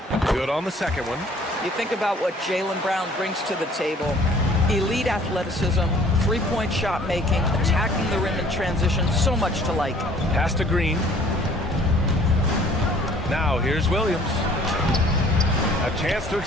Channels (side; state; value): both; normal; correlation 0.55